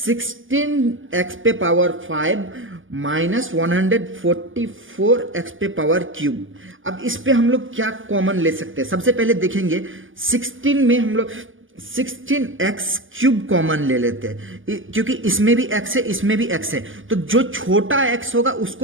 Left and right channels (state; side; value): late; left; 0.58 ms